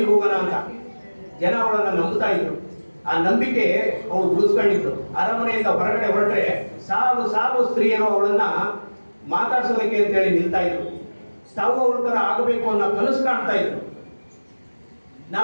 ಹೋಗೋಣ ಅಂತ. ಜನ ಅವಳನ್ನ ನಂಬುತ್ತಾ ಇದ್ರು. ಆ ನಂಬಿಕೆ ಅವಳು ಉಳಿಸ್ಕೊಂಡಿದ್ರು. ಅರಮನೆಯಿಂದ ಹೊರಗಡೆ ಹೊರಟ್ರೆ ಸಾಲು ಸಾಲು ಸ್ತ್ರೀಯರು ಅವಳನ್ನ ಮಾತಾಡ್ಸೋದಕ್ಕೆ ಅಂತೇಳಿ ನಿಲ್ತಾ ಇದ್ರು. ತಾವು ಅವಳ ತರ ಆಗಬೇಕು ಅನ್ನೋ ಕನಸು ಕಾಣ್ತಾ ಇದ್ರು.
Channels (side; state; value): both; inverted; correlation -1.00